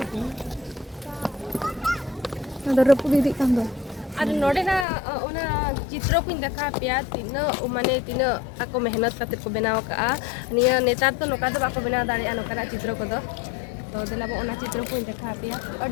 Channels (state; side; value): drops out; right; at 4.9 s